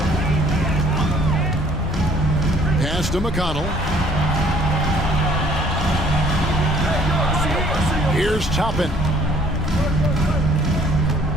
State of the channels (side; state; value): both; normal; correlation 0.59